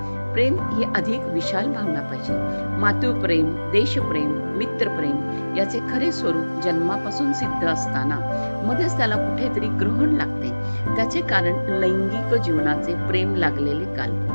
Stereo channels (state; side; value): inverted; both; correlation -1.00